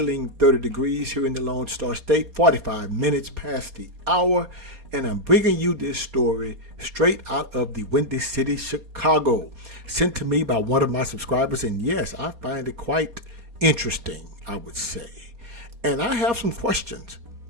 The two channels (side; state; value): left; late; 4.2 ms